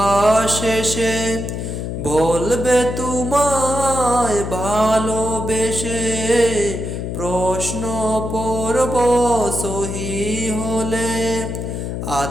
এসে বলবে তোমায় ভালোবেসে। প্রশ্ন পর্ব সহি হলে,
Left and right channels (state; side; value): noise; left; hum, 5 dB below the sound